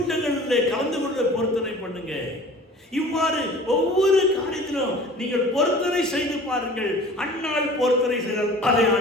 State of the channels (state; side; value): normal; both; correlation 0.44